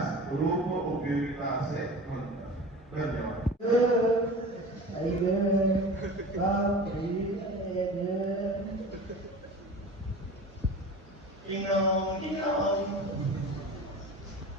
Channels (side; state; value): both; normal; correlation 0.36